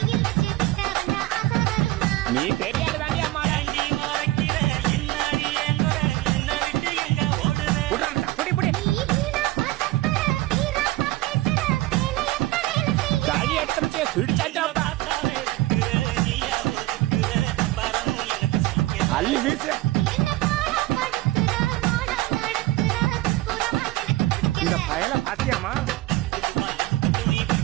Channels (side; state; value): left; quieter; 18.3 dB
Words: நீ தெரியாது தாண்டி அம்மா. புடி புடி காடி எடுத்து பிடிச்சாச்சாப்பா. அள்ளி வீசு. இந்த பயல பாத்தியாமா?